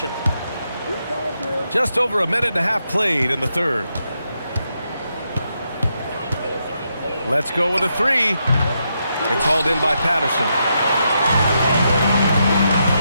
Just over a minute and a half played in the third. Let's go with a three. It's hauled in by Patterson.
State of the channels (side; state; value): both; inverted; correlation -0.82